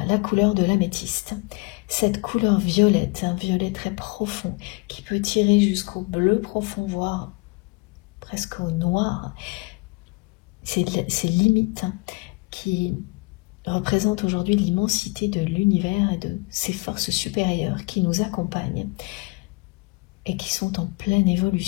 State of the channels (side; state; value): right; quieter; 26.8 dB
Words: la couleur de l'améthyste. Cette couleur violette, un violet très profond, qui peut tirer jusqu'au bleu profond, voire presque au noir. C'est limite qui représente aujourd'hui l'immensité de l'univers et de ses forces supérieures qui nous accompagnent et qui sont en pleine